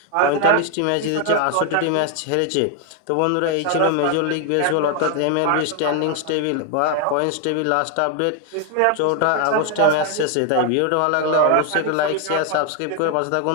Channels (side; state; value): both; different; correlation 0.00